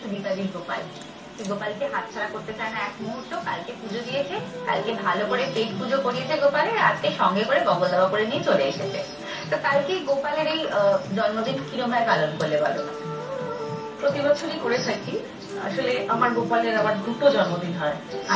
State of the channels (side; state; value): both; identical; correlation 1.00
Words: সুদীপাদির গোপাল। গোপালকে হাতছাড়া করতে চায় না এক মুহূর্ত। কালকে পুজো দিয়েছে, কালকে ভালো করে পেট পুজো করিয়েছে গোপালের, আজকে সঙ্গে করে বগল দাবা করে নিয়ে চলে এসেছে। তো কালকে গোপালের এই জন্মদিন কিরকম পালন করলে বলো? প্রতি বছরই করে থাকি। আসলে আমার গোপালের আবার দুটো জন্মদিন হয়।